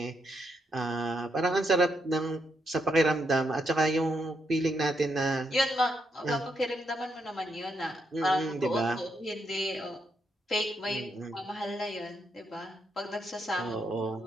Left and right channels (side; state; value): both; normal; correlation 0.79